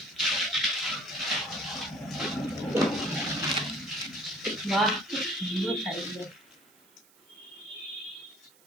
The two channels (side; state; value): right; noise; hiss, 28 dB below the sound